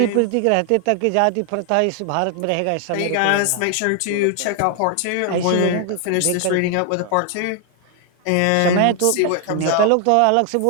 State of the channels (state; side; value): different; both; correlation 0.00